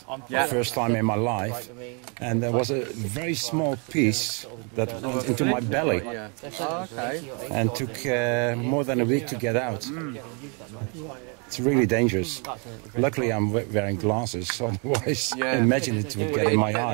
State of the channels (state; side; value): quieter; left; 35.7 dB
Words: First time in my life, and there was a very small piece that went into my belly, and took more than a week to get out. It's really dangerous. Luckily, I'm wearing glasses, so otherwise, imagine it would get in my